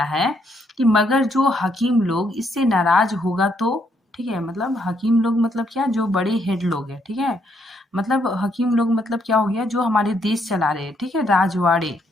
है कि मगर जो हकीम लोग इससे नाराज होगा तो। ठीक है, मतलब हकीम लोग मतलब क्या, जो बड़े हेड लोग हैं। ठीक है, मतलब हकीम लोग मतलब क्या हो गया, जो हमारे देश चला रहे हैं। ठीक है, राजवाड़े।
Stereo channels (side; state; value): both; normal; correlation 0.73